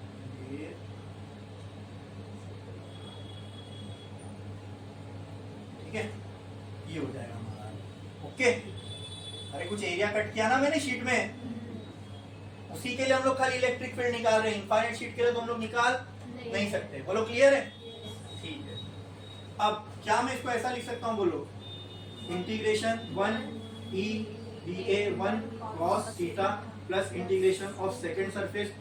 ठीक है, ये हो जाएगा हमारा। ओके, अरे कुछ एरिया कट किया ना मैंने शीट में, उसी के लिए हम लोग खाली इलेक्ट्रिक फील्ड निकाल रहे हैं। इनफाइनाइट शीट के लिए तो हम लोग निकाल नहीं सकते। बोलो क्लियर है? ठीक है। अब क्या मैं इसको ऐसा लिख सकता हूँ? बोलो integration 1 E D A 1 cos theta plus integration of second surface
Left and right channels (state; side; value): identical; both; correlation 1.00